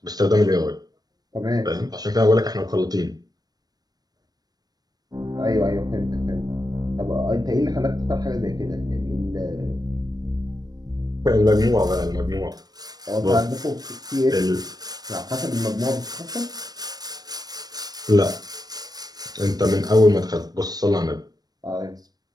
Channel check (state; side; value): late; left; 0.19 ms